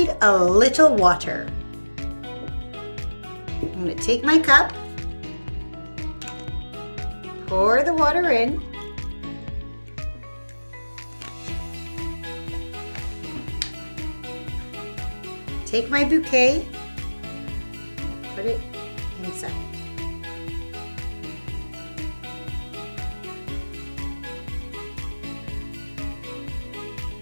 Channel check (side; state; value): both; inverted; correlation -1.00